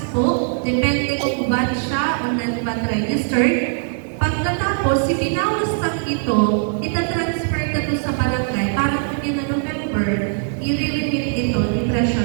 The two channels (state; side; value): silent; left; 55 dB below the other